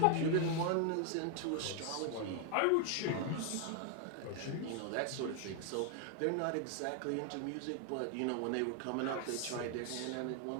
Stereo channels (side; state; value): both; different; correlation 0.00